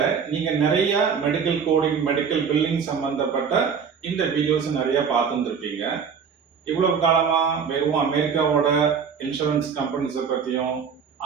நீங்க நிறைய மெடிக்கல் கோடிங் மெடிக்கல் பில்லிங் சம்பந்தப்பட்ட இந்த வீடியோஸ் நிறைய பார்த்துருப்பீங்க. இவ்வளவு காலமா வெறும் அமெரிக்காவோட இன்சூரன்ஸ் கம்பெனிஸை பத்தியும்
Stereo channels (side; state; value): left; quieter; 6.6 dB